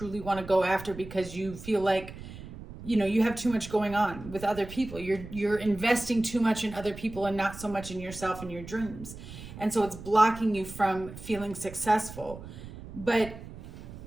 want to go after, because you feel like, you have too much going on with other people. You're investing too much in other people and not so much in yourself and your dreams. And so it's blocking you from feeling successful. But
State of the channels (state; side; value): noise; right; rumble, 13 dB below the sound